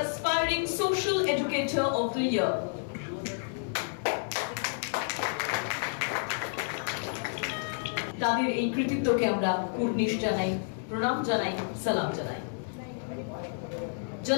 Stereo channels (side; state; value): right; silent; digital silence